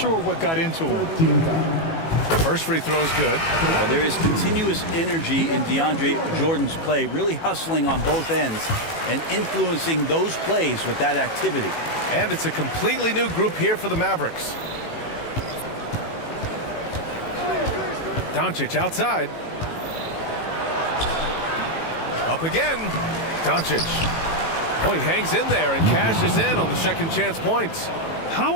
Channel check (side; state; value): right; late; 18 ms